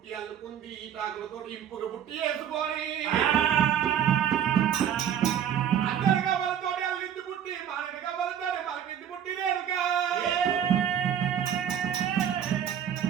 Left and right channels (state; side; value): quieter; left; 9.4 dB